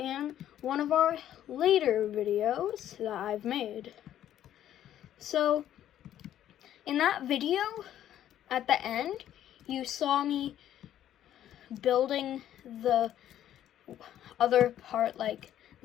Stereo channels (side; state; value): right; quieter; 11.5 dB